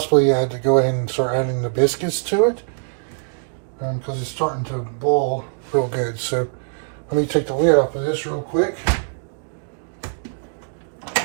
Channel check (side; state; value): left; silent; digital silence